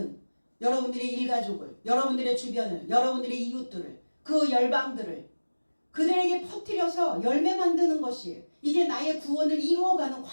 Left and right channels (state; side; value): inverted; both; correlation -1.00